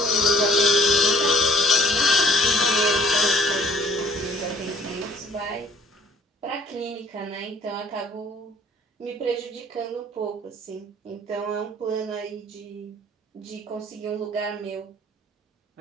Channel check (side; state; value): both; normal; correlation 0.55